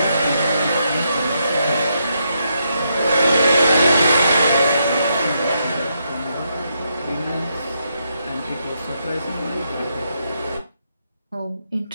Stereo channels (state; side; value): inverted; both; correlation -0.80